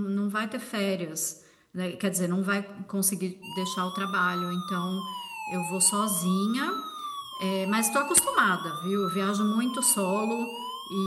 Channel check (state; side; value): identical; both; correlation 1.00